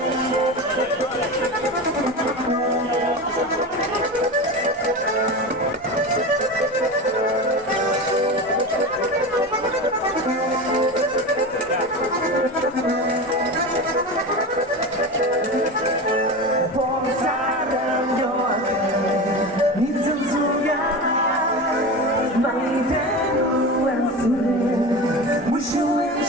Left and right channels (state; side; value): noise; right; hum, 30 dB below the sound